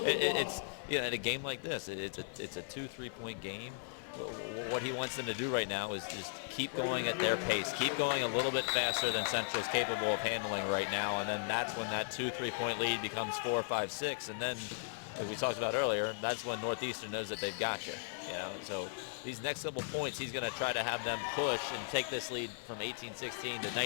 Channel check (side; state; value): right; silent; 53 dB below the other